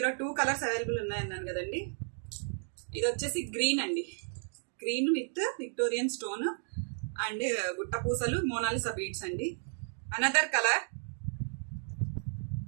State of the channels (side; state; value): left; silent; 55 dB below the other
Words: 2 కలర్స్ అవైలబుల్ ఉన్నాయన్నాను కదండి. ఇది వచ్చేసి గ్రీన్ అండి, green with Victorian stone and గుట్ట పూసలు మోనాలిసా బీడ్స్ అండి. అనదర్ కలర్